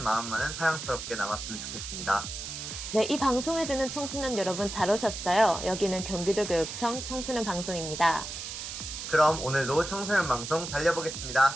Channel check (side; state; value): right; noise; hiss, 7 dB below the sound